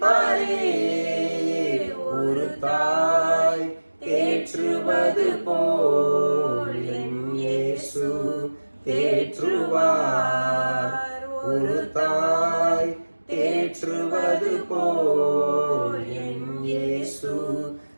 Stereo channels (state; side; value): inverted; both; correlation -1.00